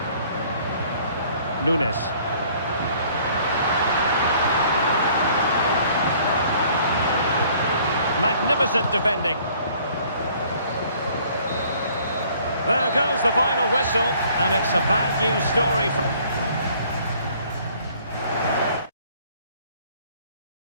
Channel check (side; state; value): both; inverted; correlation -0.57